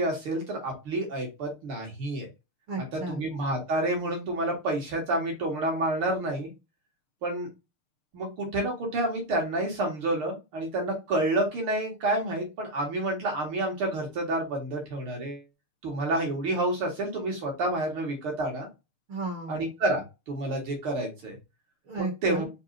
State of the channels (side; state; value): left; late; 6.7 ms